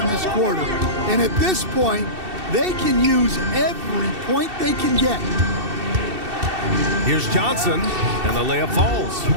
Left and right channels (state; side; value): late; left; 2.7 ms